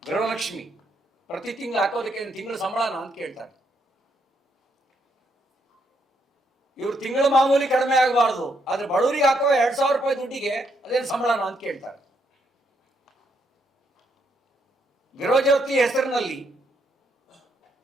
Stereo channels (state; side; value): normal; both; correlation 0.76